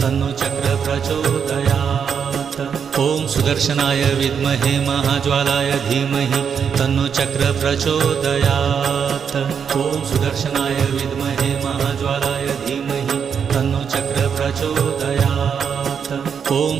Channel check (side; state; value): left; quieter; 7.1 dB